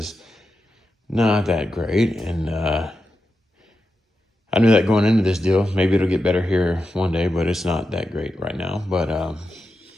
not that great, and I knew that going into this deal. Maybe it'll get better here one day, but it's not that great right now. But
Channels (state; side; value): normal; both; correlation 0.89